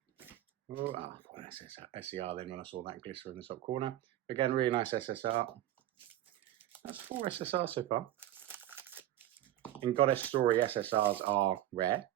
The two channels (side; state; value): left; quieter; 13.4 dB